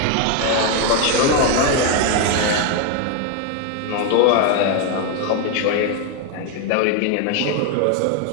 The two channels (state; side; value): different; both; correlation 0.01